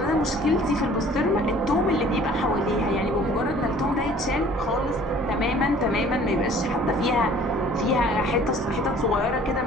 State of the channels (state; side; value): normal; both; correlation 0.52